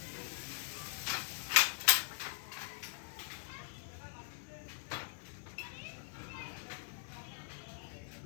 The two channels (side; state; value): right; silent; 50 dB below the other